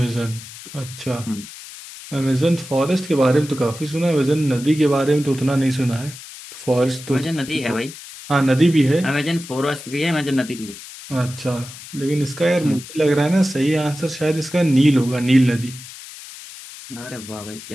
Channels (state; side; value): noise; left; hiss, 15 dB below the sound